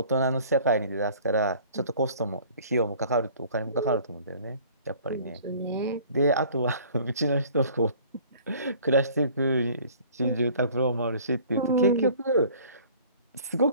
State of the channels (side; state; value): both; inverted; correlation -0.51